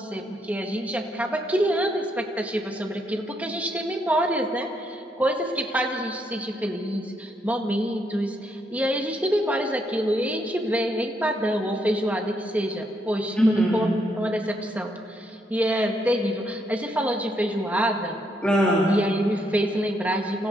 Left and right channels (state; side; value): normal; both; correlation 0.76